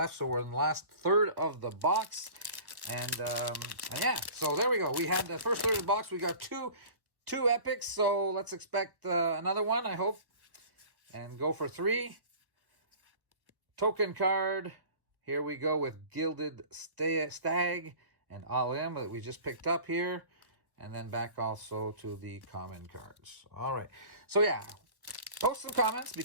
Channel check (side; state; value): left; late; 1.2 ms